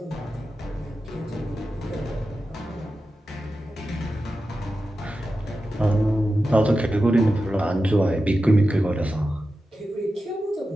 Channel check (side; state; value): both; normal; correlation 0.92